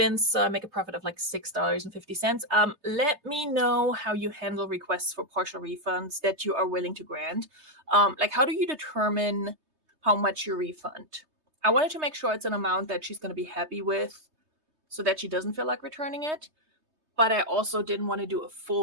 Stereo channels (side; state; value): left; late; 3.2 ms